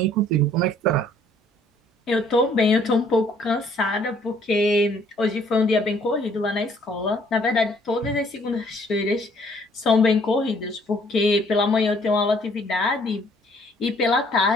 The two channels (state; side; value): normal; both; correlation 0.61